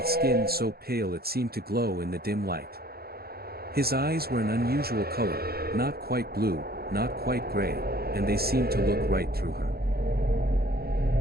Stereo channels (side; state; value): left; late; 0.45 ms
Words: skin so pale it seemed to glow in the dim light. His eyes were an unusual color, not quite blue, not quite gray, and they seemed to look right through her.